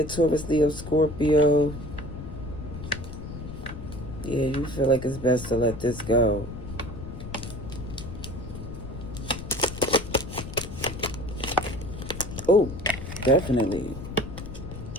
Taurus, Leo, Scorpio. Yeah, you feel like it's best to let this go. Oh, definitely.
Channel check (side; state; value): left; noise; rumble, 10 dB below the sound